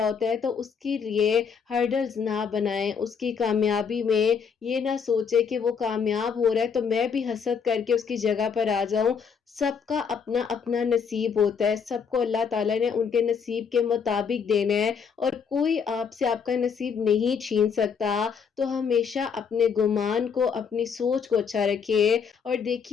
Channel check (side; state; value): right; quieter; 6.4 dB